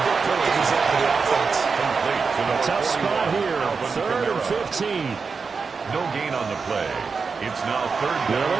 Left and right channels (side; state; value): left; quieter; 5.0 dB